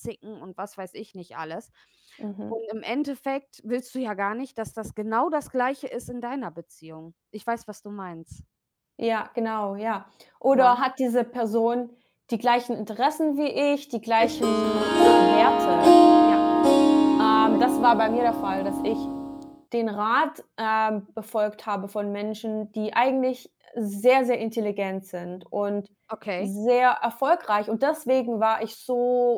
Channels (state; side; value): identical; both; correlation 1.00